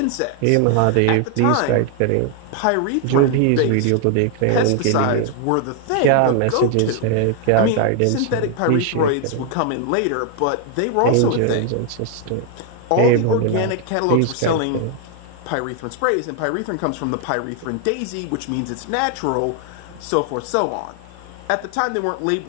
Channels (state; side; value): different; both; correlation 0.00